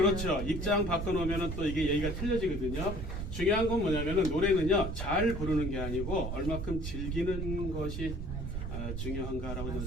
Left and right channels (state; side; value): noise; right; rumble, 4 dB below the sound